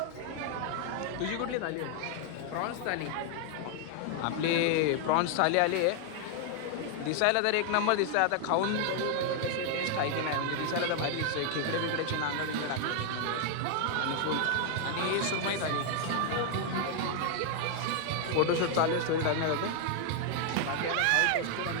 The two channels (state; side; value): different; both; correlation 0.00